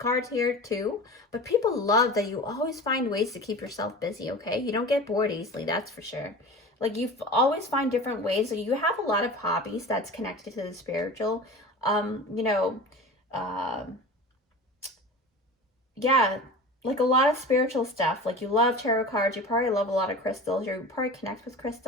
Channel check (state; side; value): normal; both; correlation 0.35